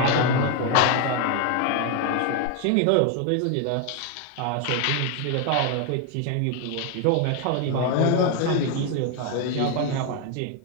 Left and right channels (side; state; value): both; different; correlation 0.01